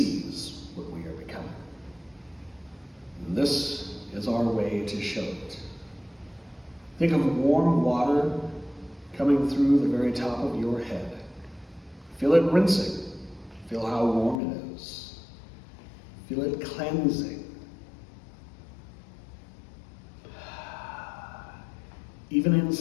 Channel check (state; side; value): drops out; right; at 14.4 s